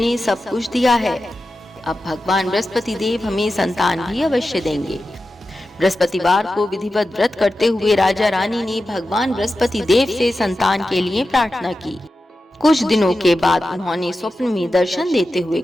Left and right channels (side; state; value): both; normal; correlation 0.92